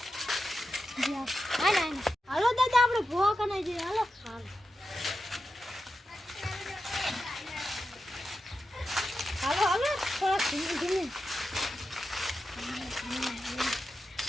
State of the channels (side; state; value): both; normal; correlation 0.90